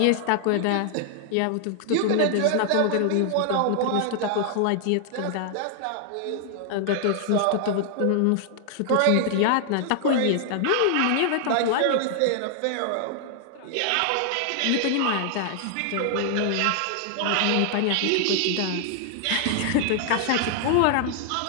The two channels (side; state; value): both; different; correlation 0.00